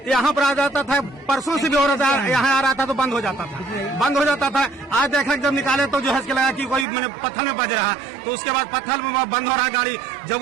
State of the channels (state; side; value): drops out; left; at 6.9 s